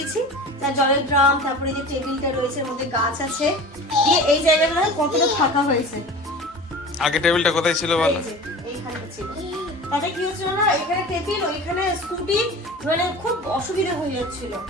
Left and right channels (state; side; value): normal; both; correlation 0.36